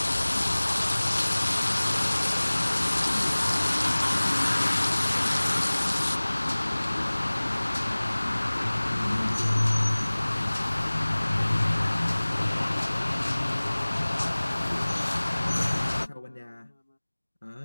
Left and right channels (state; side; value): inverted; both; correlation -1.00